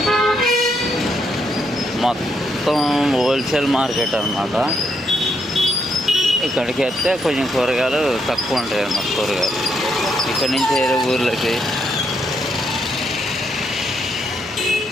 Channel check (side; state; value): both; normal; correlation 0.77